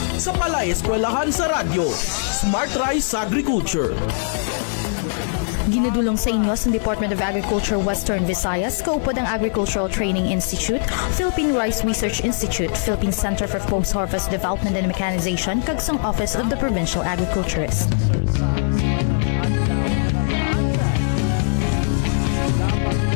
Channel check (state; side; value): silent; right; digital silence